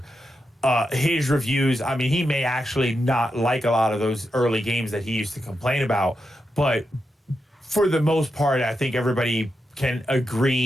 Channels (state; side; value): normal; both; correlation 0.86